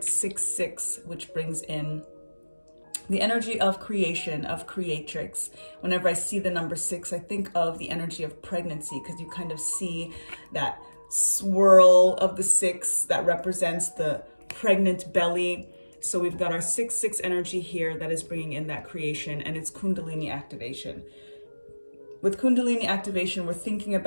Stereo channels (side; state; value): both; inverted; correlation -1.00